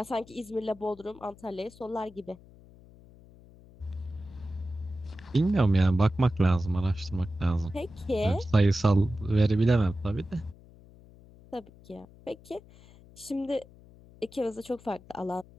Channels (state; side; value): noise; left; hum, 23 dB below the sound